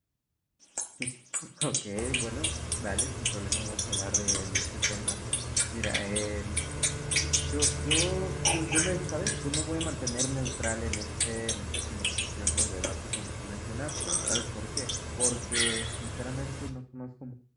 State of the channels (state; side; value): identical; both; correlation 1.00